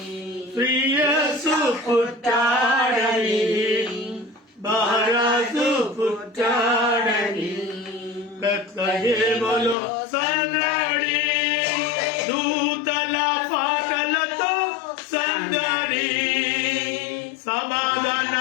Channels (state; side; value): drops out; right; at 9.8 s